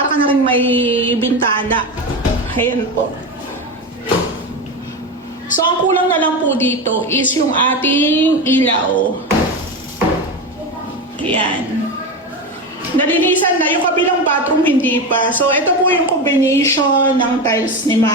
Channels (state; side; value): normal; both; correlation 0.19